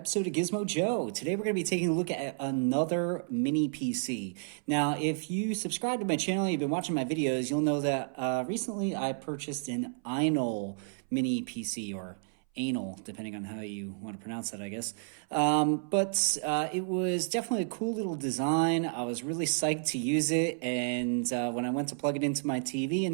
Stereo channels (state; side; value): silent; left; 57 dB below the other